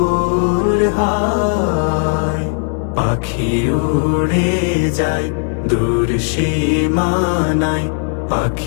হয়। পাখি উড়ে যায় দূর সীমানায়,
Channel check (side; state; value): right; silent; 64 dB below the other